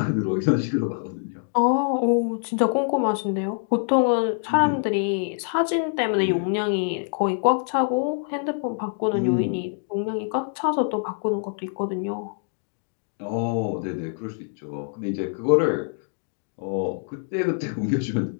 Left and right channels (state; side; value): silent; right; 62 dB below the other